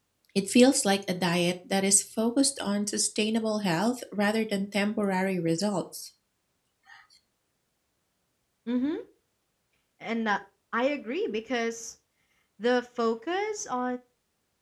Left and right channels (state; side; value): identical; both; correlation 1.00